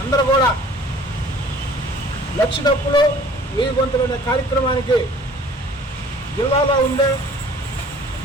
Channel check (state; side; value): normal; both; correlation 0.51